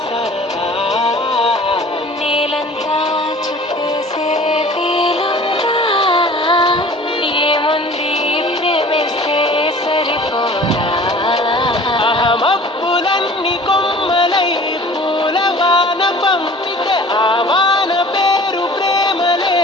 సరదా నేలంతా చుట్టేసే వీలుందా ఏముంది ప్రేమిస్తే సరిపోదా మబ్బులన్నీ కొమ్మలై పూల వాన పంపితే ఆ వాన పేరు ప్రేమలే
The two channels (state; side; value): normal; both; correlation 0.46